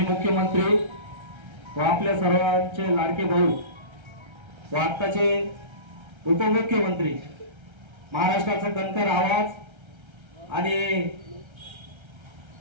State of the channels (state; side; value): late; left; 1.3 ms